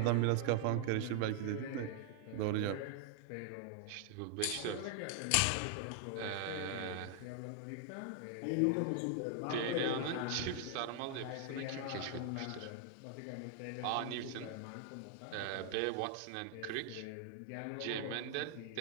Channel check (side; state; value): both; different; correlation 0.00